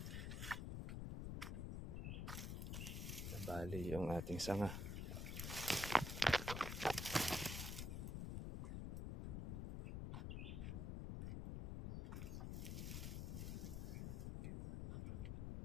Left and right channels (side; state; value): left; noise; rumble, 3 dB below the sound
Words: nabali yung ating sanga.